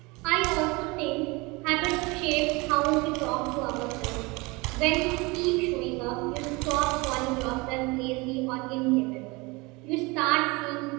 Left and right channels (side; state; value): left; quieter; 25.4 dB